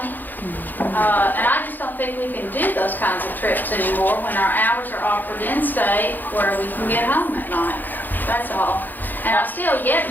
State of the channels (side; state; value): right; late; 0.087 ms